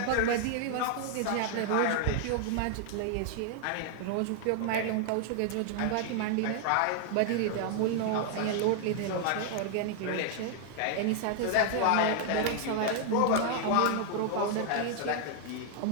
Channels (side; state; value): both; different; correlation 0.00